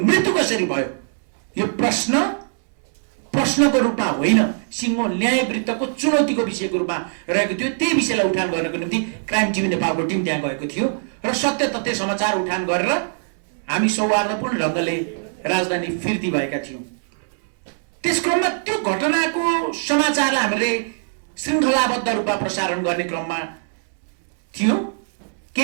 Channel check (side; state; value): left; silent; 65 dB below the other